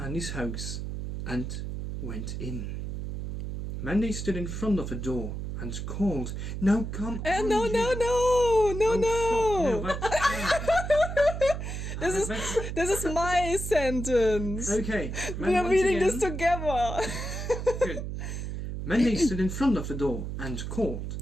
house and went in. Mandy stood in front of the door and called, "Now come on, No, Jill." no. Fuck, that's This is my sentence. okay. We are once reading again- this together. Good. Mandy stood in front of the door and called.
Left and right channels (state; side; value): noise; right; hum, 5 dB below the sound